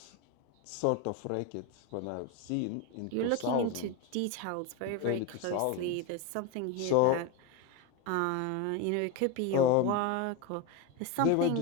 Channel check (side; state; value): both; different; correlation 0.03